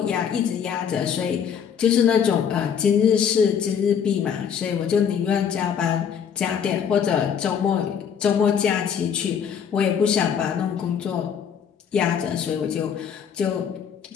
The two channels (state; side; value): quieter; right; 7.7 dB